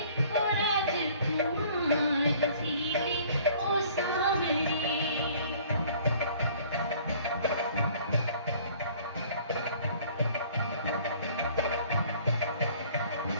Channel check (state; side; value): inverted; both; correlation -0.54